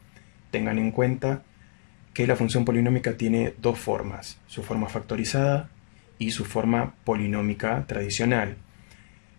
Tengan en cuenta que la función polinómica tiene dos formas, su forma factorizada y su forma polinómica tradicional.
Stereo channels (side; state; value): right; silent; 60 dB below the other